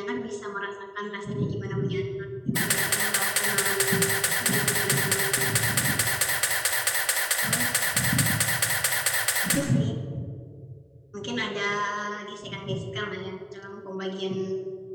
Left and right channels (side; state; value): both; identical; correlation 1.00